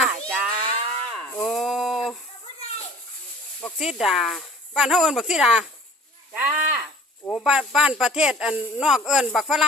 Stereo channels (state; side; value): normal; both; correlation 0.47